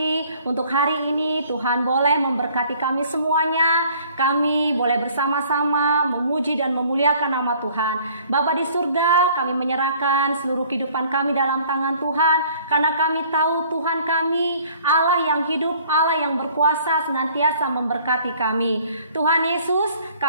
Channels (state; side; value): inverted; both; correlation -0.55